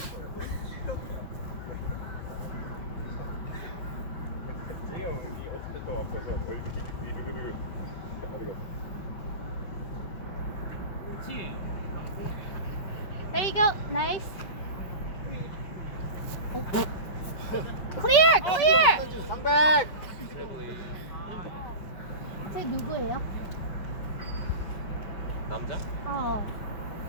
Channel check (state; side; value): late; right; 5.2 ms